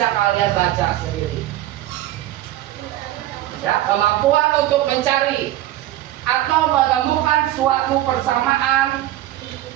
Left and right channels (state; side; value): quieter; left; 14.4 dB